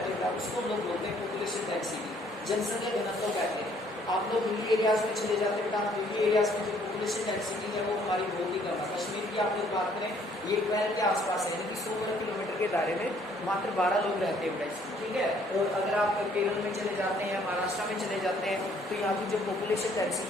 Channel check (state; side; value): normal; both; correlation 0.62